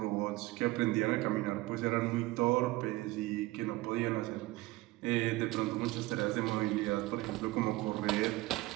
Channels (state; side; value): quieter; left; 19.7 dB